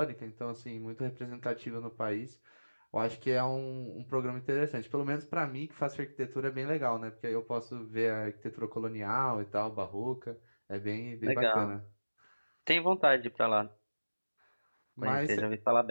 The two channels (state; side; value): inverted; both; correlation -1.00